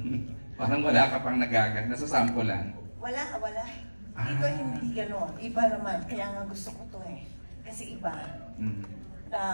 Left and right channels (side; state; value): both; inverted; correlation -1.00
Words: parang wala ka pang nagagat, nasasampulan? Wala. Dito hindi gano'n. Iba naman. Kaya nga gusto ko to eh. Kasi iba.